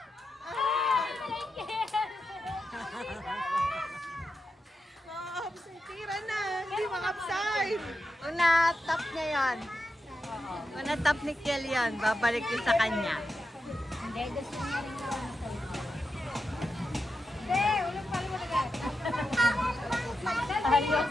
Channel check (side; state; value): both; normal; correlation 0.88